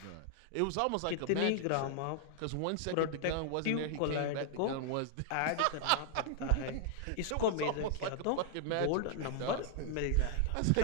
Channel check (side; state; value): both; different; correlation 0.00